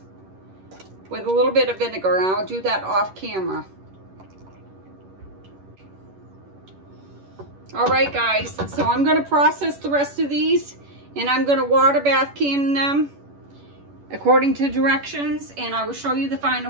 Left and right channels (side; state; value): left; late; 11 ms